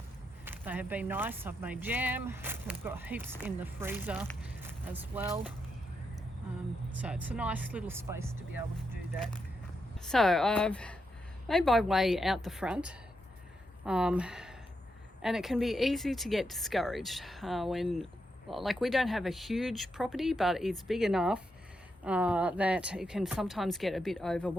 they have been nice. I've made jam. I've got heaps in the freezer as well. So it's a nice little space to be able to do that. So I've made my way out the front, and it can be easy to get discouraged when, like, we don't have a huge property, but it's big enough that it can sometimes get a bit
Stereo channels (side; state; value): both; normal; correlation 0.83